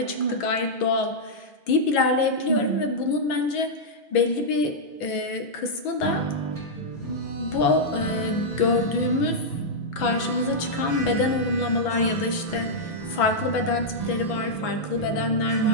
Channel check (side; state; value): right; late; 6.1 ms